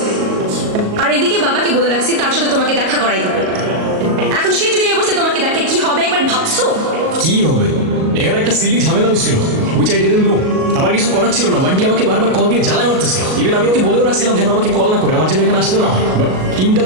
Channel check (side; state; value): left; late; 38 ms